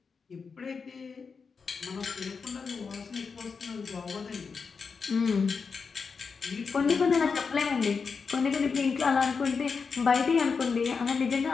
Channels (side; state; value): right; quieter; 5.3 dB